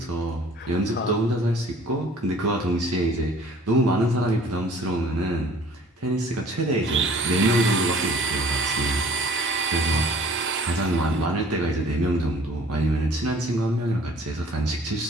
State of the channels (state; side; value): normal; both; correlation 0.52